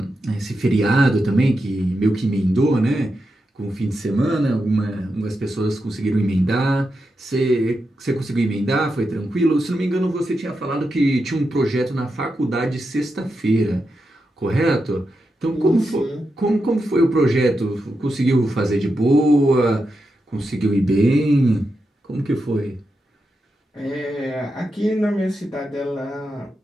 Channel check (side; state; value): both; normal; correlation 0.87